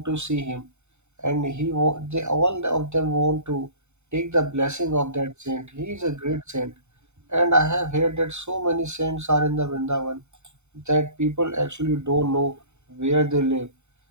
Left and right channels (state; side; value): late; left; 0.83 ms